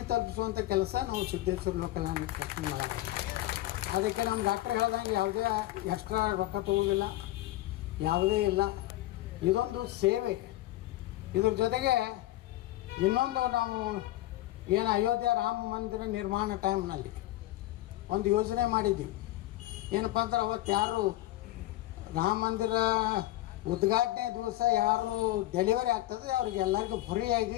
ತಲುಪಿಸುವಂಥ ಕೆಲಸ ನಾವು ಸಿದ್ದೇಶ್ವರ ಲೋಕಲ್ ಮಾಡೋದು. ಅದಕ್ಕೆ ನಮ್ಮ ಡಾಕ್ಟ್ರ್ ಹೇಳ್ದಂಗೆ ಯಾವುದೇ ಎಕ್ಸ್ಟ್ರಾ ರೊಕ್ಕ ತಗೋದಿಲ್ಲ, ಯಾವುದೇ ಇಲ್ಲ. ಇದೊಂದು ಸೇವೆ. ಇದ್ರ ಜೊತೆಗೆ ಇನ್ನೊಂದು ನಾವು ಏನು ಅಯೋಧ್ಯೆ ರಾಮ ಮಂದಿರ ನಿರ್ಮಾಣ ಟೈಮ್ನಲ್ಲಿ ಒಂದು ಯೋಜನೆ ಮಾಡಿದ್ದೀವಿ. ಏನಪ್ಪ ಅಂದ್ರೆ ಅವತ್ತು ಯಾರು ರಾಮ ಮಂದಿರ ಉದ್ಘಾಟನೆ ದಿವಸ ಯಾರು ಡೆಲಿವರಿ ಆಗ್ತದೆ ಅವ್ರಿಗೆ ಎಲ್ಲರಿಗೂ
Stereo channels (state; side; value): quieter; right; 16.4 dB